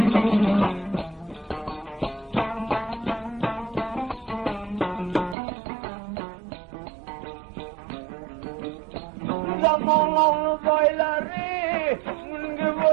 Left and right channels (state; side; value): drops out; left; at 5.4 s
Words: Zamanlı boyları, münge